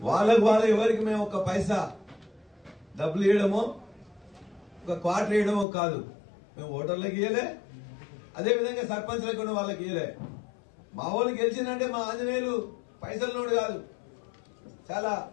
వాళ్ళకు ఎవరికి మేము ఒక పైసా డబ్బులు ఇవ్వడమో ఒక క్వార్టర్ ఇవ్వడమో కాదు. మేము ఓటర్లకు ఇవ్వలే, అదేవిధంగా సర్పంచ్లకు కూడా వాళ్ళకి ఇవ్వలే. మా వాళ్ళు గెలిచిందంటే మా ఆంజనేయులు పైసలు నోడు కాదు, చాలా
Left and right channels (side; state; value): right; drops out; at 5.7 s